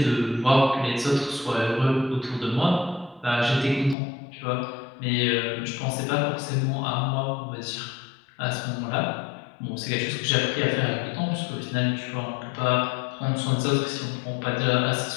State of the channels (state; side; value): drops out; right; at 4.0 s